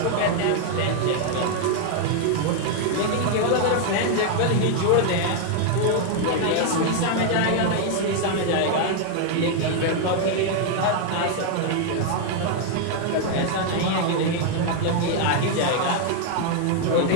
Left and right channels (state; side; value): different; both; correlation 0.00